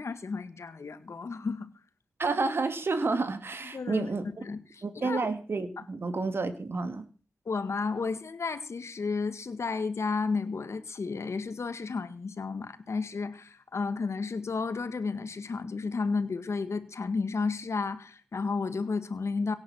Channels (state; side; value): normal; both; correlation 0.82